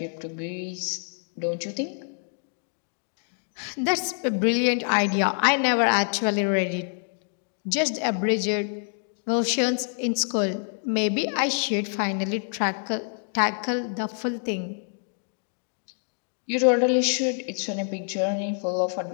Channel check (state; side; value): silent; right; 61 dB below the other